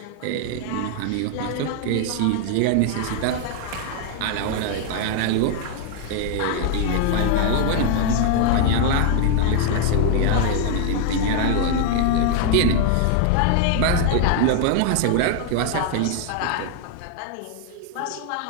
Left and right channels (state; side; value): different; both; correlation 0.00